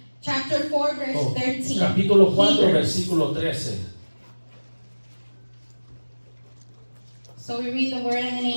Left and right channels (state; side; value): inverted; both; correlation -1.00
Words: Chapter 4 verse 13. capítulo 4, Hebrews. versículo 13. So we read the word in the